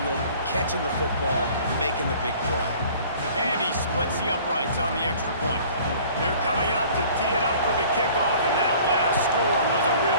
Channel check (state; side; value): inverted; both; correlation -0.50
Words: catching the football, making the big play. And he splits the uprights on the extra point. They're coming out to tee it up for the kickoff, and that last score was a